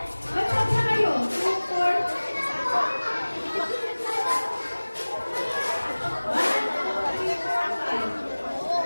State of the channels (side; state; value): both; inverted; correlation -1.00